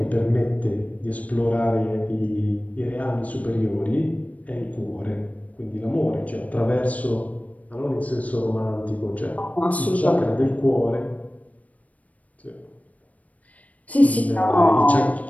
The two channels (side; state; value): right; late; 0.070 ms